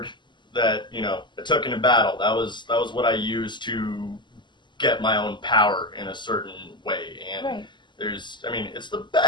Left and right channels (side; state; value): right; late; 0.22 ms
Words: that, I took into battle. That was what I used to get my own power in a certain way. And right. it's the